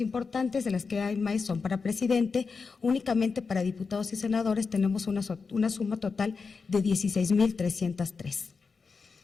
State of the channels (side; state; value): right; quieter; 4.9 dB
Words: de las que hay más son para presidente. Únicamente para diputados y senadores tenemos una suma total de 16,303.